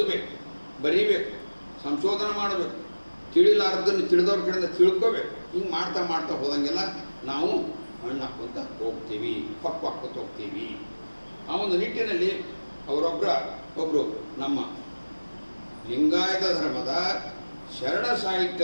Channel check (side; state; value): both; inverted; correlation -1.00